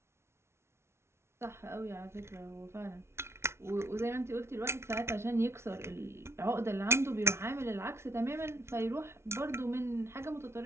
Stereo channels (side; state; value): left; late; 0.13 ms